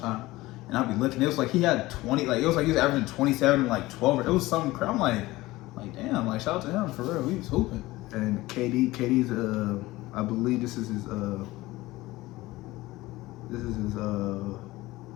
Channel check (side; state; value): right; quieter; 18.8 dB